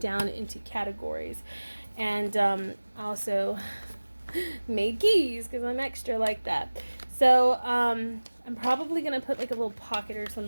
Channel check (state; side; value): inverted; both; correlation -1.00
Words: into categories. And also made keys because I'm extra like that. So I'm probably gonna put like a little pocket or